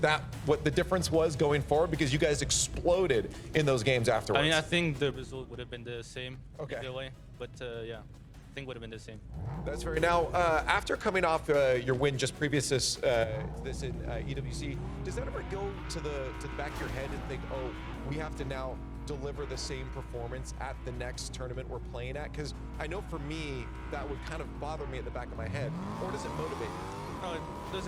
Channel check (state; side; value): identical; both; correlation 1.00